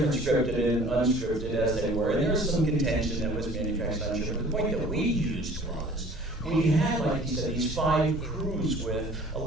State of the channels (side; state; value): both; normal; correlation 0.49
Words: scripted and unscripted as they were, and there was some contention that was manufactured, I'm sure. But the point that we used was, we had, like you said, these 5 crews with a